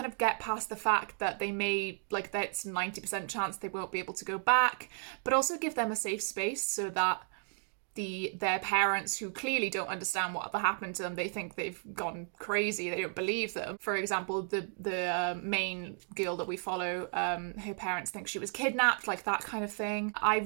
of get past the fact that they may, that's 90% chance they won't be able to go back, but also give them a safe space so that their parents, who clearly don't understand what happened to them, they think they've gone crazy, they don't believe them. For example, the main girl that we follow, her parents think she was kidnapped, like that kind of thing. I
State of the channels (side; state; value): left; silent; 55 dB below the other